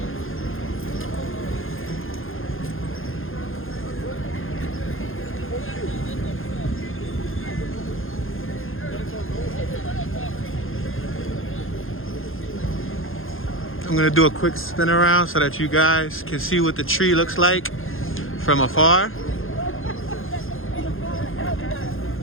I'm gonna do a quick spin around so that you guys can see what the tree looks like from afar.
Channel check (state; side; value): late; right; 0.60 ms